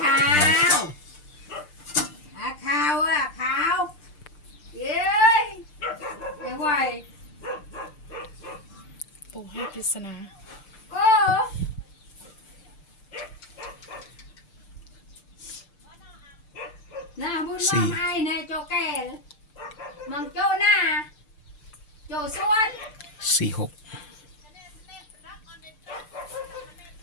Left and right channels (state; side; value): late; right; 6.7 ms